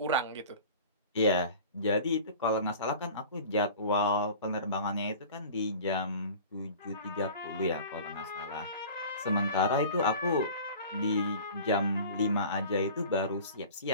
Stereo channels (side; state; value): both; inverted; correlation -0.41